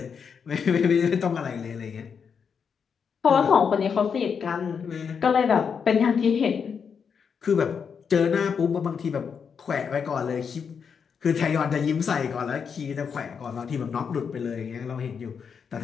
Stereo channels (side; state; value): right; quieter; 6.5 dB